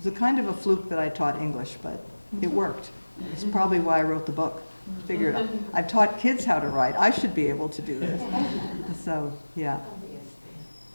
a kind of a fluke that I taught English, but it worked. It's probably why I wrote the book. Figured I've taught kids how to write. I should be able to do this. So, yeah.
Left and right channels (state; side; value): inverted; both; correlation -1.00